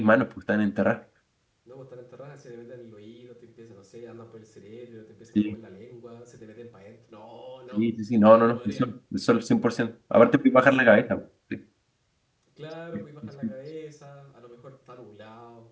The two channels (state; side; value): identical; both; correlation 1.00